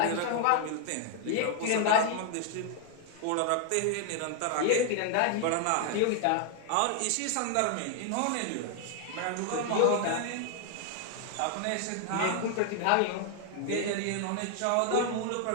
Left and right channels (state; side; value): different; both; correlation 0.00